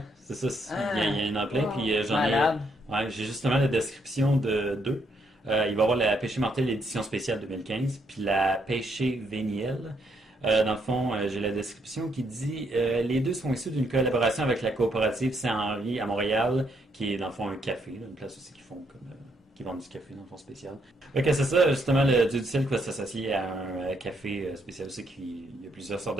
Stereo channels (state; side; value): normal; both; correlation 0.74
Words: C'est ça. Ah. Il y en a plein. Wow. Puis j'en ai... Malade. Ouais, j'ai justement la description de deux. Il va y avoir la Péché mortel édition spéciale 2015, puis la Péché véniel. Dans le fond, j'ai la description qui dit les deux sont issus d'une collaboration avec la coopérative Saint-Henri à Montréal, qui est dans le fond un café, là, une place aussi qui font comme qui vendent du café dans le fond spécial. Ok, c'est ça, justement, le Dieu du ciel qui va s'associer à un café spécial aussi, il y a plusieurs sortes